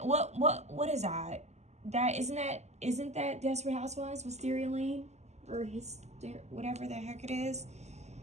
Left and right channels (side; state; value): left; late; 0.33 ms